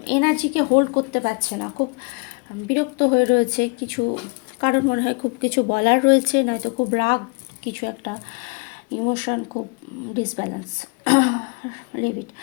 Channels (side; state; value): right; quieter; 32.6 dB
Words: এনার্জিকে হোল্ড করতে পারছে না, খুব বিরক্ত হয়ে রয়েছে কিছু, কারণ মনে হয় খুব কিছু বলার রয়েছে, নয়তো খুব রাগ, কিছু একটা ইমোশন খুব ডিসব্যালেন্স। লিভ ইট।